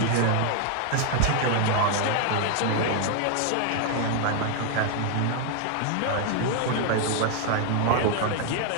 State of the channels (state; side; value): different; both; correlation 0.00